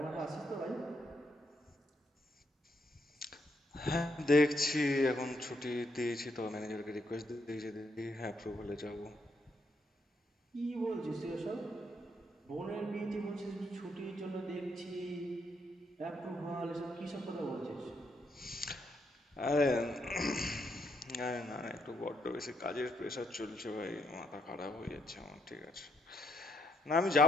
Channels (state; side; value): normal; both; correlation 0.76